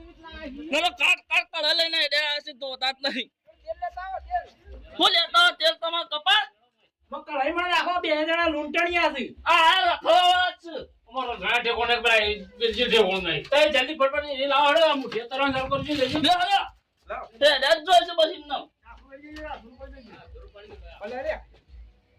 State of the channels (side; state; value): both; identical; correlation 1.00